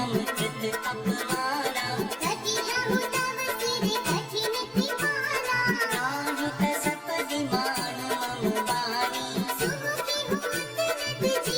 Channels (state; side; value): identical; both; correlation 1.00